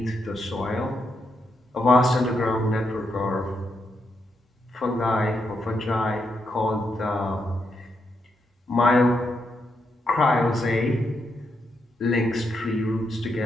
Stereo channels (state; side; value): normal; both; correlation 0.81